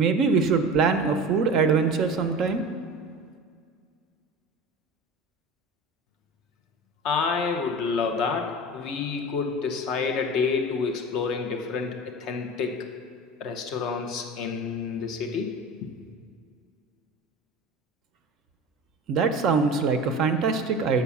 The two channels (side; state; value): both; normal; correlation 0.34